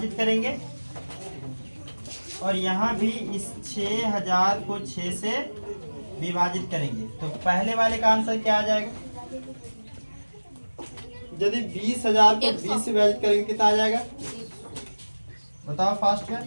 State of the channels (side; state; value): both; inverted; correlation -1.00